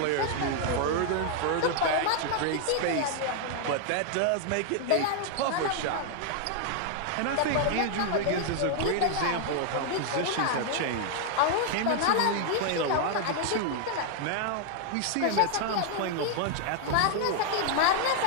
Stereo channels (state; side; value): different; both; correlation 0.00